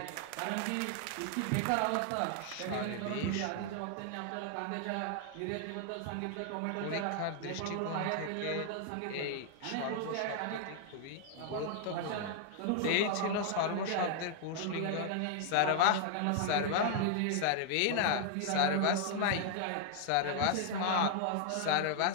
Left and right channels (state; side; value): different; both; correlation 0.00